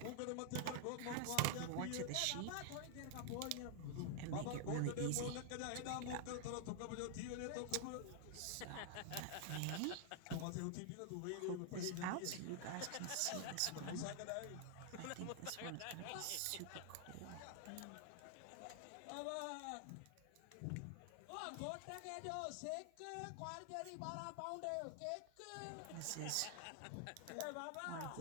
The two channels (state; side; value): different; both; correlation 0.00